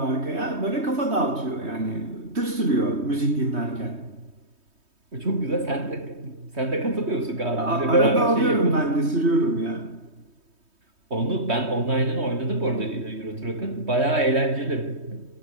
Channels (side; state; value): left; late; 3.2 ms